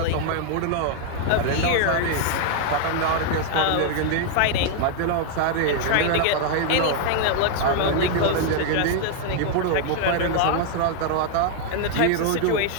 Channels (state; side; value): different; both; correlation 0.00